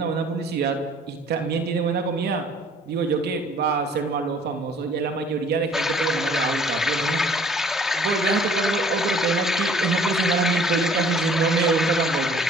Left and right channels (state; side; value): normal; both; correlation 0.55